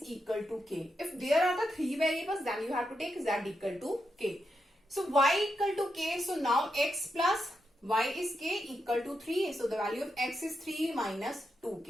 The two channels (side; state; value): both; normal; correlation 0.84